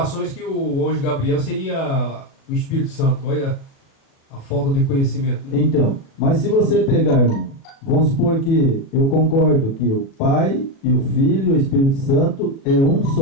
que o anjo Gabriel seria o Espírito Santo. Olha a falta de conhecimento. Né? Então, mas se você pegar, irmão, vamos supor que eu concordo que o Pai e o Filho e o Espírito Santo é um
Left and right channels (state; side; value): late; right; 37 ms